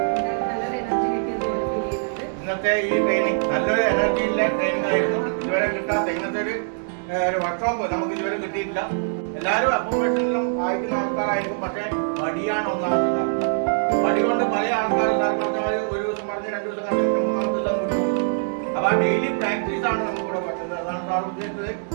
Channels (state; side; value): silent; left; digital silence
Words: ഇന്നത്തെ ഈ ട്രെയിനിങ് നല്ലൊരു എനർജിയിലെ ട്രെയിനിങ് ആയിരുന്നു. ഇതുവരെ കിട്ടാത്ത ഇന്നത്തെ ഒരു വർക്ക്ഷോപ്പ് നമുക്ക് ഇതുവരെ കിട്ടിയിട്ടില്ല. എല്ലാവരും അക്കോമഡേഷനിലും അയക്കുന്ന ആൾക്കാരായിരിക്കും. പക്ഷേ മടിയാണ് ഒന്നാമത്തെ കാരണം. മടി കൊണ്ട് പല ആൾക്കാരും ഒരു ദിവസം പറഞ്ഞ് 2 ദിവസം കണ്ടിട്ട് 3-ാമത്തെ ദിവസം വിട്ടു. അപ്പോൾ ഡെയിലി പ്രാക്ടീസ് ആണ് നമുക്കിവിടെ പറ്റുന്നത്. അതാണ് സാർ ഉദ്ദേശിച്ചത്.